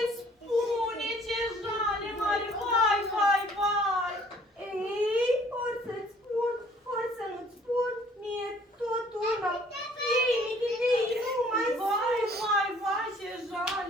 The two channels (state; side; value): normal; both; correlation 0.57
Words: spune, ce jale mare, vai, vai, vai! Ei, ori să-ți spun, ori să nu-ți spun, mie tot una! Ei, michitei, nu mai Vai, vai, vai, ce